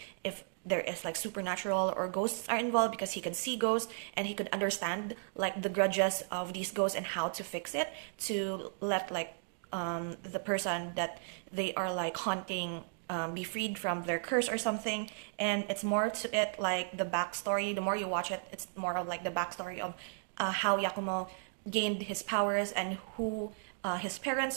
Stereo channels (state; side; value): silent; left; digital silence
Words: if there is like supernatural or ghosts are involved, because he can see ghosts and he could understand like the grudges of these ghosts and how to fix it to let like the person that they are like haunting be freed from their curse or something. And it's more to it like the backstory. The more you watch it, it's more of like the backstory of how Yakumo gained his powers and who his